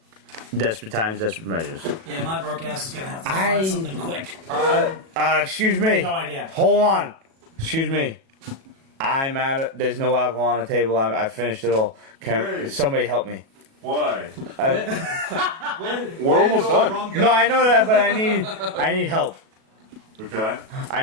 desperate times, desperate measures. Yeah, my broke ass is gonna have to I- find something quick. Excuse me. No idea. Hold on. Excuse me. I'm out of. There's no alcohol on the table. I finished it all. Can Hey. somebody help me? Why? We're almost done. No, I know that, but I need help. Okay. I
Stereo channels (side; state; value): left; late; 37 ms